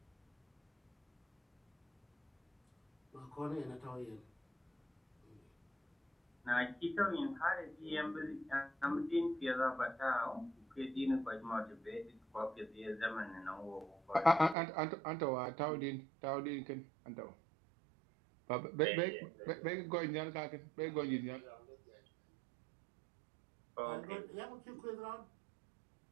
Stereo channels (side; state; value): left; drops out; at 14.6 s